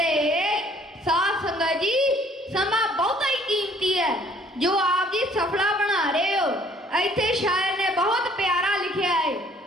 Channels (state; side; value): normal; both; correlation 0.58